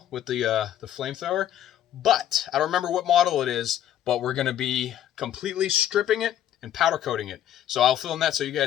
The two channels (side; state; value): right; quieter; 11.1 dB